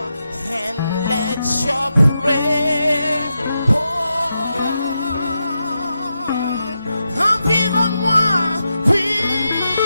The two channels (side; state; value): both; inverted; correlation -0.87